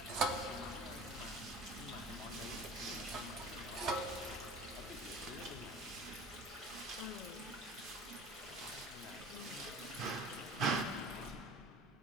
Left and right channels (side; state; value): both; normal; correlation 0.41